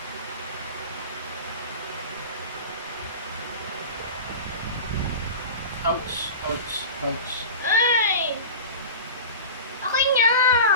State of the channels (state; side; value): inverted; both; correlation -0.32